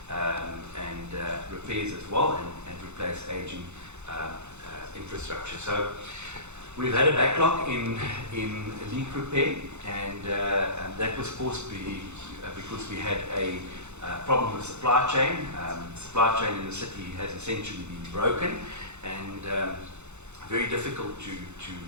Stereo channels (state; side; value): late; left; 0.82 ms